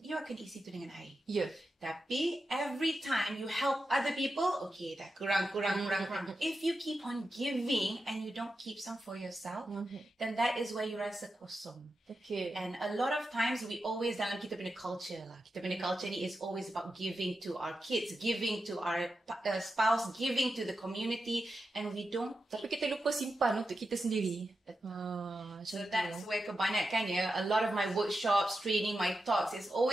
you akan isi tu dengan air. Yeah. Tapi every time you help other people, okay, dah kurang. If you keep on giving and you don't keep some for yourself, then that is where you rasa kosong. Okay. And a lot of times we always dalam kita punya culture lah. Kita punya culture ni is always about giving to our kids, giving to our spouse, giving to the community, and we don't. Tapi kita lupa simpan untuk kita sendiri. So that's where kebanyakan a lot of my workshops, training, my talks is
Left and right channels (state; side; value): normal; both; correlation 0.90